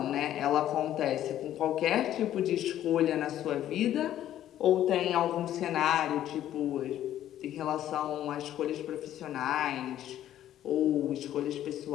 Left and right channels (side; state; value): right; quieter; 12.0 dB